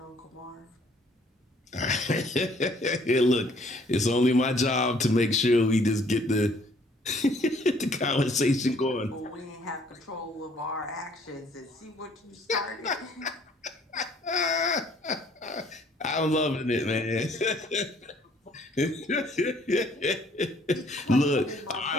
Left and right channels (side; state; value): both; normal; correlation 0.60